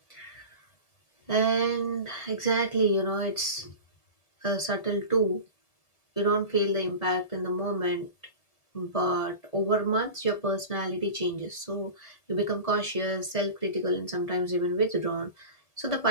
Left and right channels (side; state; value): right; late; 1.7 ms